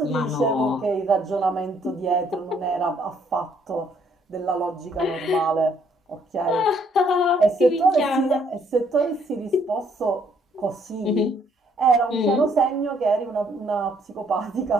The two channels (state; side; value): normal; both; correlation 0.67